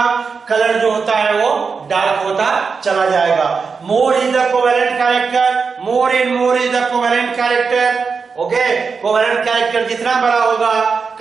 कलर जो होता है वो डार्क होता चला जाएगा। मोर is the covalent character, more is the covalent character. Okay, covalent character जितना बड़ा होगा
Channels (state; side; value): quieter; left; 5.2 dB